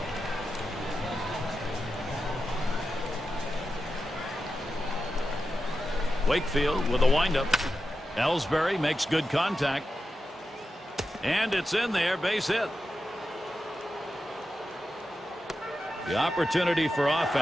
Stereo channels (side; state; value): both; normal; correlation 0.90